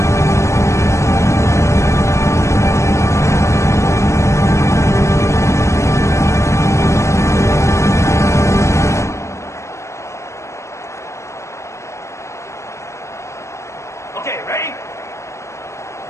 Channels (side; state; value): right; late; 0.14 ms